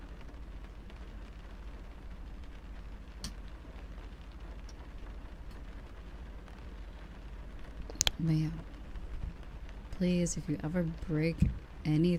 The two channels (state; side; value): identical; both; correlation 1.00